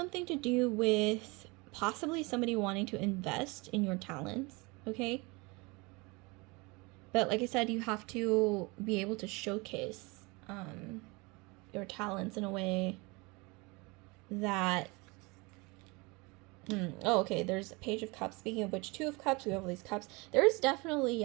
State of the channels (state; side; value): quieter; left; 26.6 dB